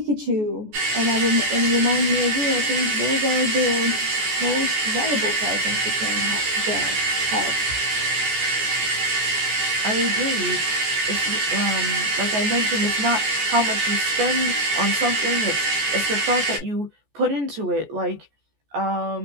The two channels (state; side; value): late; left; 14 ms